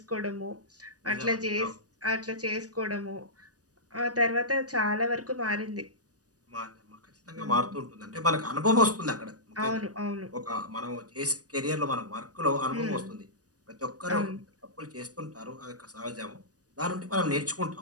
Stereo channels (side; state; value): left; late; 0.68 ms